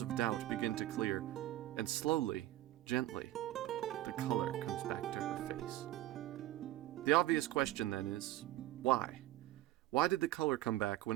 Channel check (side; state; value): left; quieter; 15.2 dB